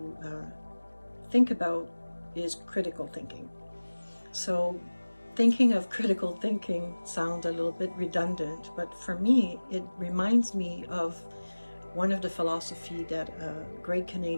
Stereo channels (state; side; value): inverted; both; correlation -1.00